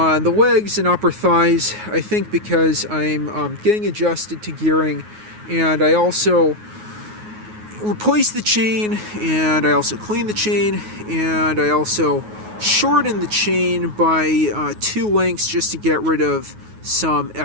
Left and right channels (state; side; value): late; left; 9.4 ms